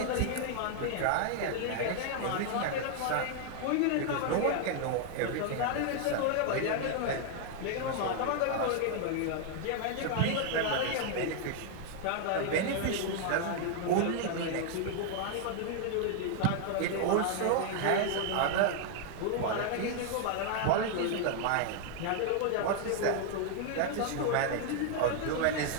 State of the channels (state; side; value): different; both; correlation 0.00